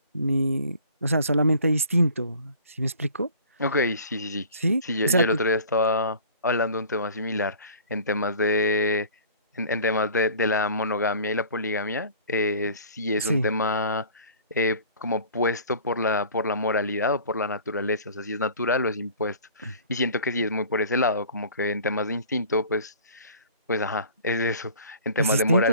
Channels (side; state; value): both; inverted; correlation -0.46